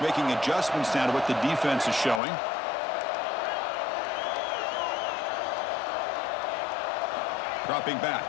making adjustments now to what the defense is showing. Dropping back.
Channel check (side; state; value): right; drops out; at 2.2 s